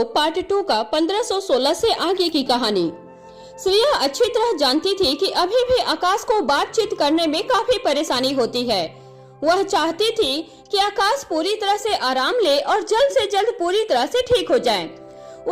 पार्ट 2 का 1516 से आगे की कहानी। श्रेया अच्छी तरह जानती थी कि अभी भी आकाश को बातचीत करने में काफी परेशानी होती है। वह चाहती थी कि आकाश पूरी तरह से आराम ले और जल्द से जल्द पूरी तरह से ठीक हो जाए।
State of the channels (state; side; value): identical; both; correlation 1.00